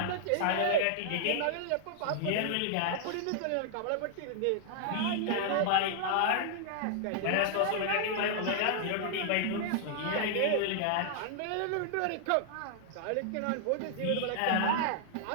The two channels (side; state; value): both; different; correlation -0.01